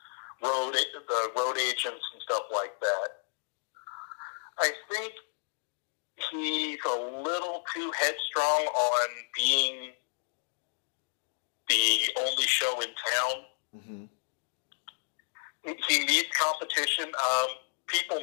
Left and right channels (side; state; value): right; silent; digital silence